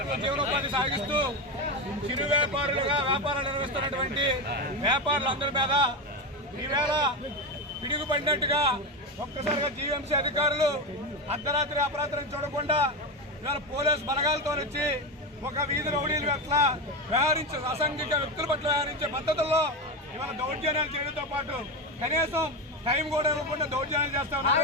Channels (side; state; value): both; normal; correlation 0.15